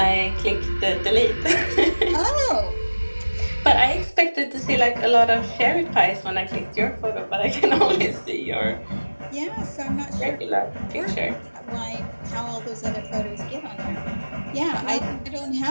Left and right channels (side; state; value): both; inverted; correlation -1.00